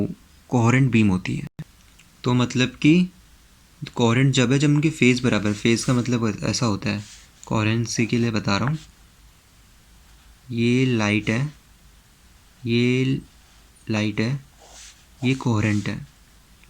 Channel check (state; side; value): identical; both; correlation 1.00